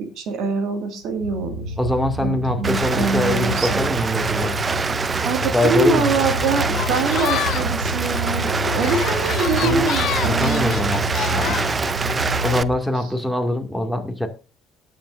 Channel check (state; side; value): normal; both; correlation 0.58